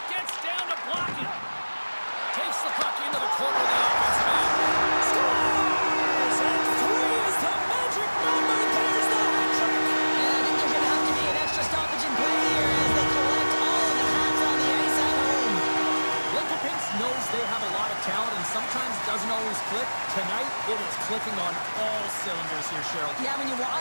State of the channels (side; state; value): both; inverted; correlation -1.00